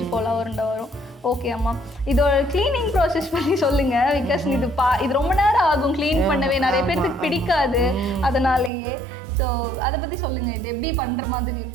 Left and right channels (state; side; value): drops out; left; at 8.7 s